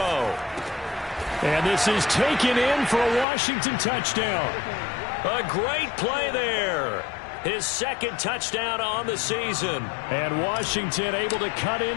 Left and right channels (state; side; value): drops out; right; at 3.2 s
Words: And this is taken in for a Washington touchdown. A great play there. His 2nd touchdown on the season. And Washington able to cut